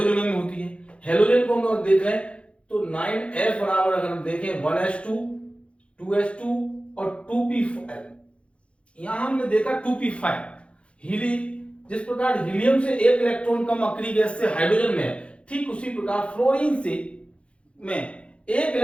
में होती है। हैलोजन को हम लोग देख रहे हैं तो 9s बराबर अगर हम देखें 1s2 2s2 और 2p5, यहां हमने देखा 2p5 हीली। जिस प्रकार हीलियम से एक इलेक्ट्रॉन कम अक्रिय गैस से हाइड्रोजन में है, ठीक उसी प्रकार फ्लोरीन से में एक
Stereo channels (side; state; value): right; late; 0.060 ms